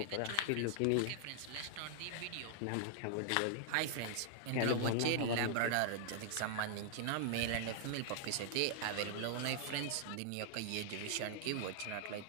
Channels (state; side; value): different; both; correlation -0.01